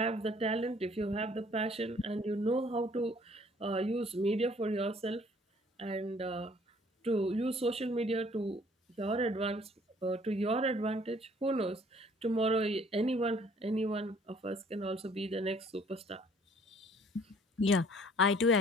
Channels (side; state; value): both; normal; correlation 0.58